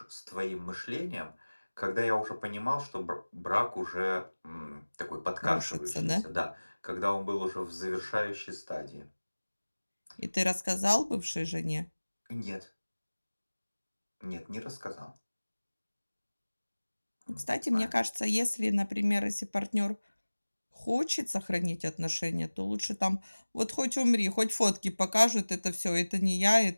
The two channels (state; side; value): inverted; both; correlation -1.00